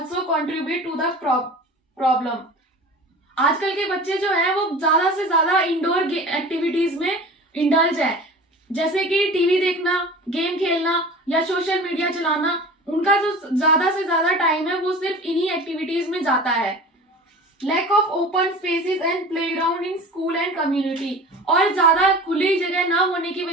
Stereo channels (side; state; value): both; normal; correlation 0.37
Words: contribute to the problem. आजकल के बच्चे जो हैं वो ज्यादा से ज्यादा इंडोर एक्टिविटीज में इंडल्ज है, जैसे कि टीवी देखना, गेम खेलना या सोशल मीडिया चलाना. उनका जो ज्यादा से ज्यादा टाइम है वो सिर्फ इन्हीं एक्टिविटीज में जाता है. Lack of open spaces and playground in school and community. और ज्यादा खुली जगह ना होने की